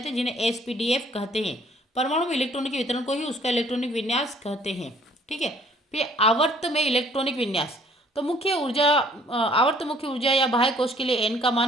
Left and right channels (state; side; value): normal; both; correlation 0.58